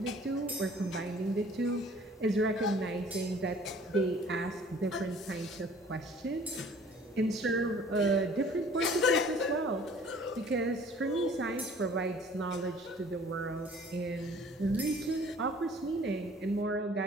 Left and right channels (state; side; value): normal; both; correlation 0.52